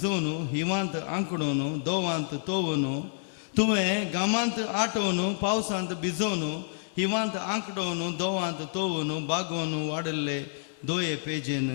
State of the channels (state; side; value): silent; right; 59 dB below the other